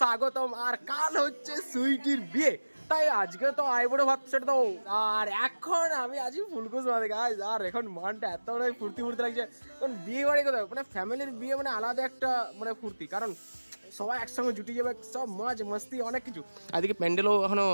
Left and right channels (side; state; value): both; inverted; correlation -1.00